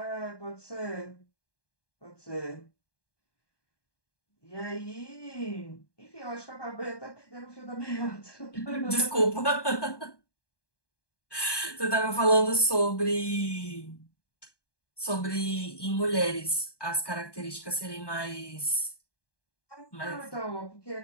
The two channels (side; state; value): right; late; 1.2 ms